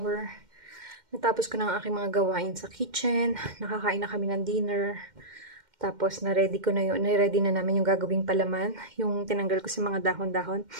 Natapos ko na ang aking mga gawain sa kitchen. Nakakain na kami ng dinner. Tapos, na-ready ko na yun. Na-ready na namin yung gagawing palaman. Yung tinanggal ko sa mga dahon-dahon.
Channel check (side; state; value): left; late; 2.1 ms